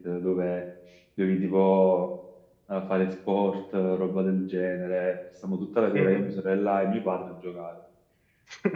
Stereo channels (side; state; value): both; identical; correlation 1.00